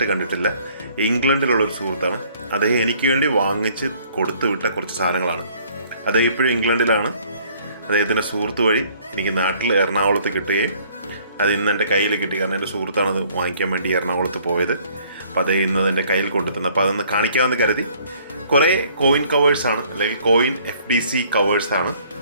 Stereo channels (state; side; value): inverted; both; correlation -0.59